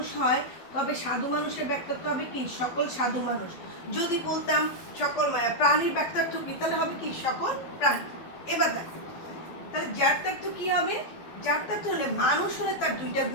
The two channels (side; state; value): right; late; 12 ms